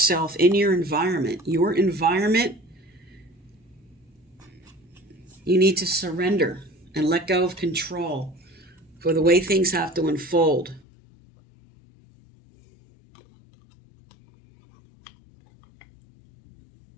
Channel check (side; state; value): right; drops out; at 10.9 s